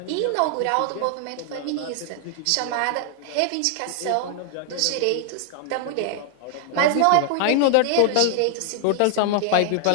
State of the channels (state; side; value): different; both; correlation 0.00